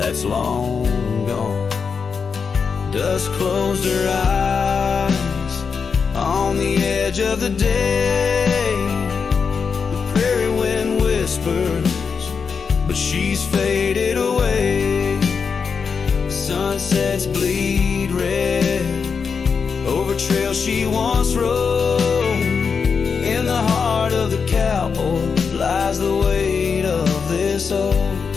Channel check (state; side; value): quieter; right; 5.7 dB